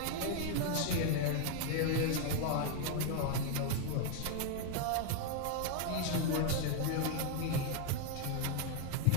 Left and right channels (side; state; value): both; different; correlation 0.00